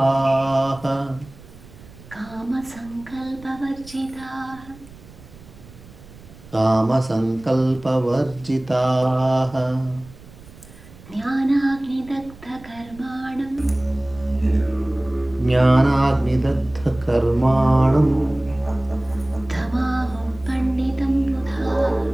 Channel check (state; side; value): noise; right; rumble, 21 dB below the sound